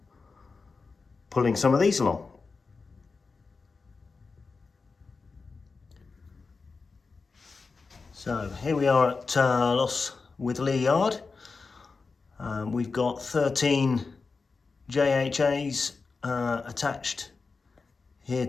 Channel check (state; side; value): quieter; right; 4.4 dB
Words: pulling some of these along. So here we are at Loss Witherley Yard. We've got 13 JHAs attached here